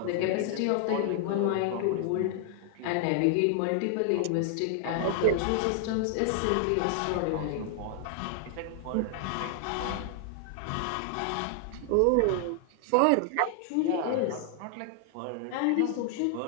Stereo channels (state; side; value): different; both; correlation 0.00